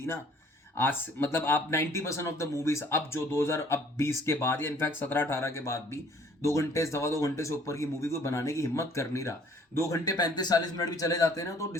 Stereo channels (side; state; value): both; normal; correlation 0.57